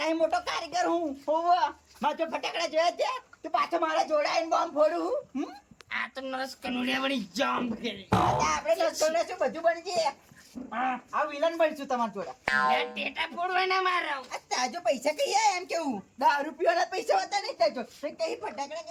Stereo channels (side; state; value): both; identical; correlation 1.00